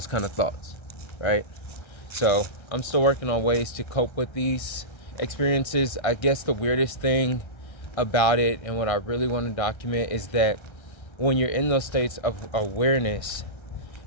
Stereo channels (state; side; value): late; right; 1.3 ms